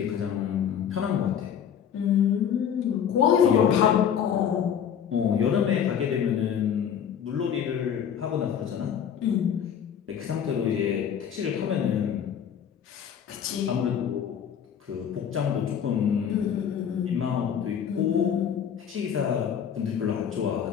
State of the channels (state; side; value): quieter; right; 8.5 dB